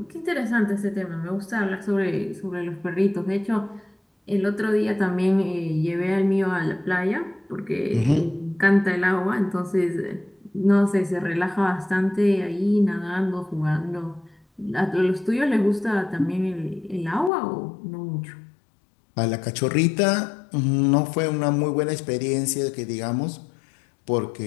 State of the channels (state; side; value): drops out; right; at 17.3 s